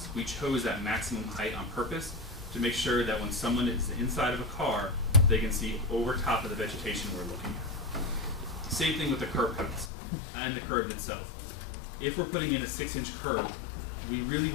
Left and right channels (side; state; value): right; drops out; at 9.9 s